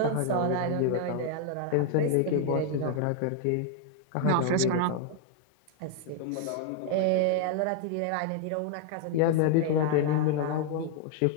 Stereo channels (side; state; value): both; different; correlation 0.00